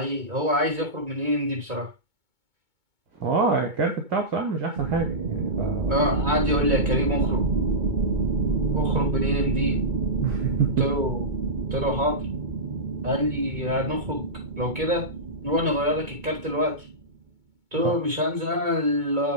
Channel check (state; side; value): late; left; 2.2 ms